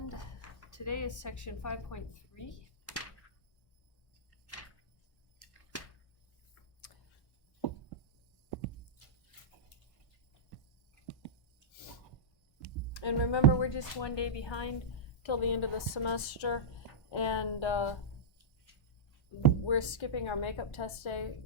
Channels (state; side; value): late; right; 1.1 ms